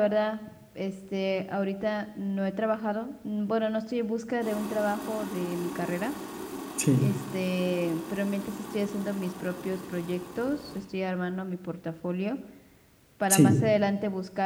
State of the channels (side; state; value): both; identical; correlation 1.00